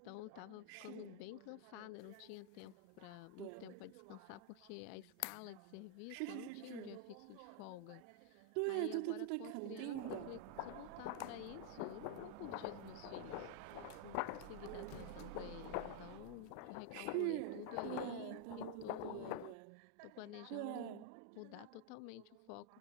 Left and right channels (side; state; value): both; different; correlation 0.00